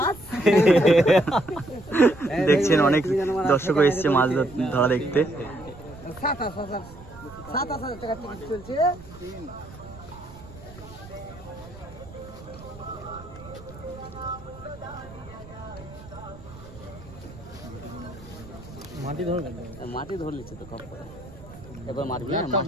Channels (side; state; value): right; noise; rumble, 17 dB below the sound